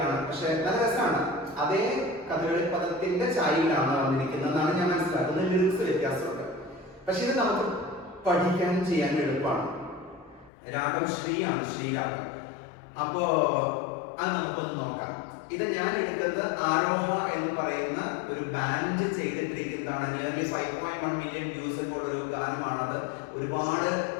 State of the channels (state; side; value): drops out; right; at 10.5 s